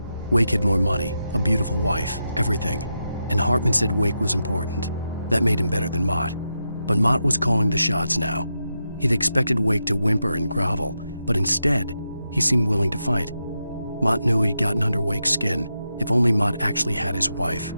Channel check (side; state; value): both; inverted; correlation -0.87